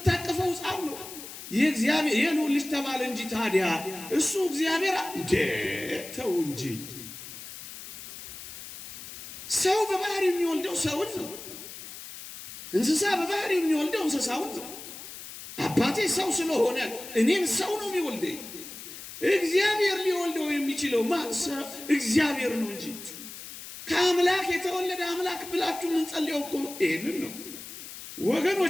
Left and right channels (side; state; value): left; noise; hiss, 12 dB below the sound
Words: ሕፃን ነው። የእግዚአብሔር የልዑል ልጅ ተባለ እንጂ ታዲያ እሱ እግዚአብሔር ተው እንጂ። ሰው በባህሪ የሚወልደው ሰውን ነው። እንስሳ በባህሪ የሚወልደው እንስሳውን ነው። አባቴ ሰው ስለሆነ እኔም ሰው ነው የሚወልደኝ። እግዚአብሔር ሊወልደው የሚችለው ማሰብ እግዚአብሔር ነው እንጂ ከአምላክ የተወለደ አምላክ ብላችሁ የምንጸልየው እኮ ይሄንን ነው